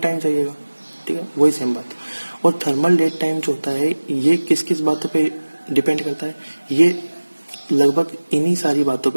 चाहिएगा। ठीक है, वही सेम बात। और थर्मल डेट टाइम जो होता है ये किस किस बातों पे डिपेंड करता है? ये लगभग इन्हीं सारी बातों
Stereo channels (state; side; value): inverted; both; correlation -1.00